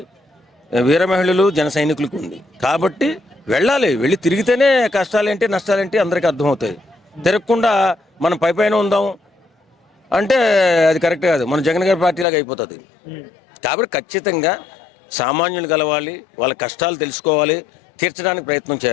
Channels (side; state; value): right; drops out; at 12.2 s